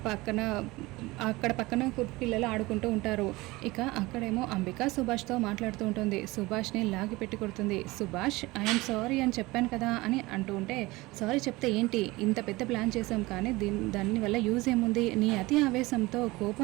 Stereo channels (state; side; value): quieter; left; 21.3 dB